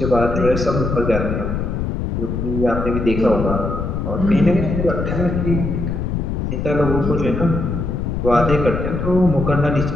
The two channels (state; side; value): noise; left; rumble, 2 dB below the sound